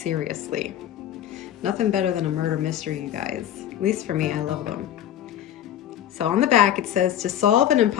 Nothing better than a murder mystery, you guys. At least for me, I love them. So on the back it says, to solve an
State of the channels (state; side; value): quieter; right; 10.9 dB